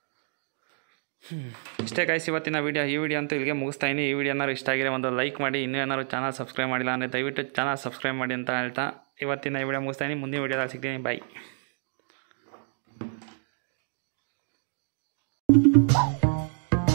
ಇಷ್ಟೇ ಗೈಸ್ ಇವತ್ತಿನ ವೀಡಿಯೋ. ಈ ವಿಡಿಯೋ ಅಂತೂ ಇಲ್ಲಿಗೆ ಮುಗಿಸ್ತಾಯಿನಿ. ಈ ವಿಡಿಯೋ ಏನಾದ್ರು ಇಷ್ಟ ಆಗಿರೋ ಒಂದು ಲೈಕ್ ಮಾಡಿ. ಇನ್ನೂ ಏನಾದ್ರು ಚಾನಲ್ ಸಬ್ಸ್ಕ್ರೈಬ್ ಮಾಡಿಲ್ಲ ಅಂದರೆ ದಯವಿಟ್ಟು ಚಾನಲ್ ಸಬ್ಸ್ಕ್ರೈಬ್ ಮಾಡಿ ಅಂತ ಹೇಳ್ತಾ ಇವತ್ತಿನ ಈ ವಿಡಿಯೋ ಮುಗಿಸ್ತಾಯಿನಿ. ಮುಂದಿನ ವಿಡಿಯೋದಲ್ಲಿ ಸಿಗ್ತೀನಿ. ಬಾಯ್.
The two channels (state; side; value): silent; left; digital silence